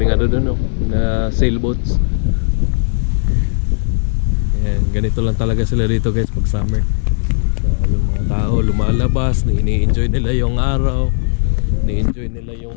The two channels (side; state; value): right; silent; 69 dB below the other